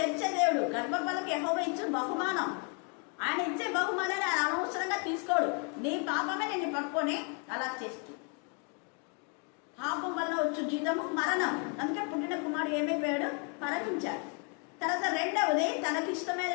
తెరిచే దేవుడు. గర్భఫలకి యెహోవా ఇచ్చిన బహుమానం. ఆయన ఇచ్చే బహుమానాన్ని ఆయన అనవసరంగా తీసుకోడు. నీ పాపమే నిన్ను పట్టుకొని అలా చేస్తూ, పాపం వల్ల వచ్చు జీతము మరణం. అందుకే పుట్టిన కుమారుడు ఏమైపోయాడు? మరణించాడు. తర్వాత రెండవది,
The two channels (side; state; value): right; quieter; 37.6 dB